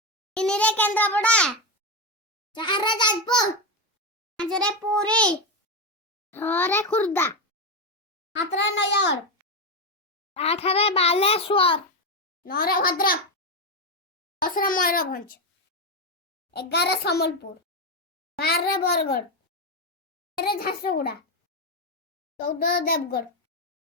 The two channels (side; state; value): both; normal; correlation 0.10